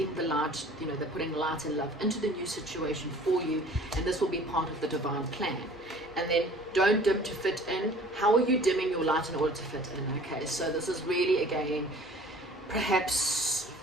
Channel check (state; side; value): normal; both; correlation 0.49